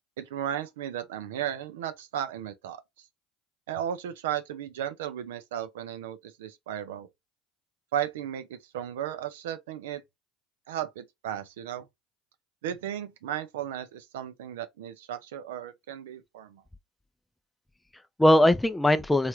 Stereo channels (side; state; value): both; normal; correlation 0.63